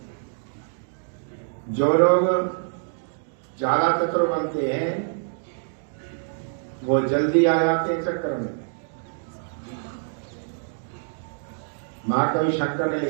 जो लोग ज्यादा चतुर बनते हैं वो जल्दी आ जाते हैं चक्कर में। महाकवि शंकर ने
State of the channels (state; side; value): silent; left; digital silence